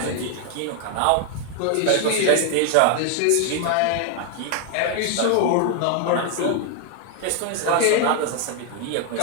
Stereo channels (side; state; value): both; different; correlation 0.00